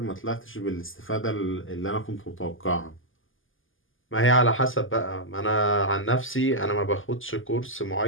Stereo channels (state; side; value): late; right; 0.58 ms